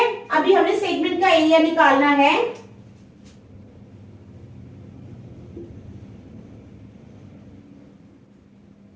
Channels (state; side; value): identical; both; correlation 1.00